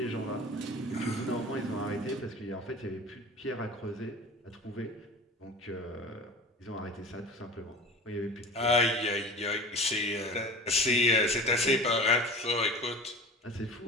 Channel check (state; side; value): normal; both; correlation 0.37